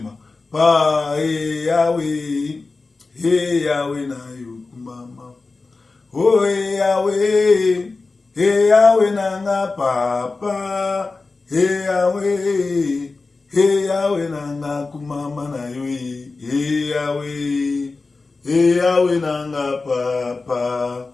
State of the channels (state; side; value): quieter; right; 3.8 dB